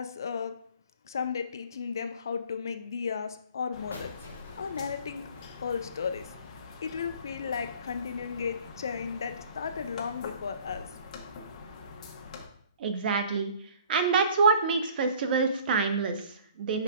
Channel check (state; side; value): inverted; both; correlation -0.51